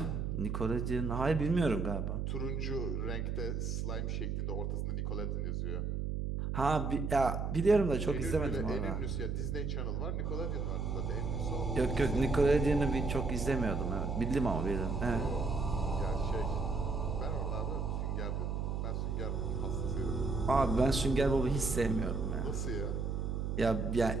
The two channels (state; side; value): noise; right; hum, 1 dB below the sound